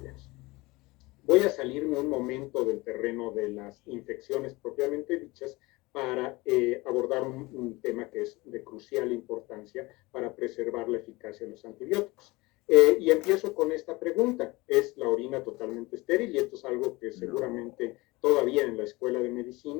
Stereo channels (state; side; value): quieter; right; 22.5 dB